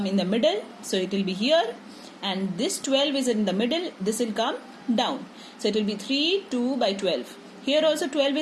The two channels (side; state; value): both; identical; correlation 1.00